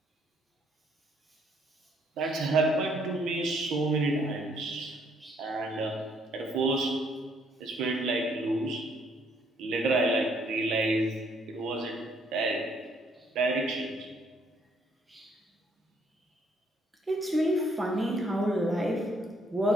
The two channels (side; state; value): both; normal; correlation 0.67